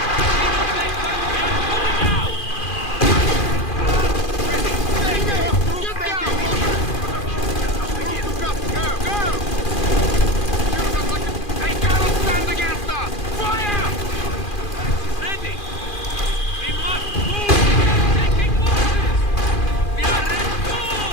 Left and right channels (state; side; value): late; right; 2.4 ms